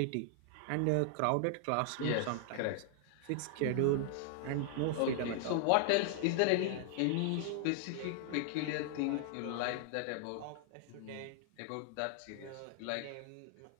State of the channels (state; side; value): different; both; correlation 0.00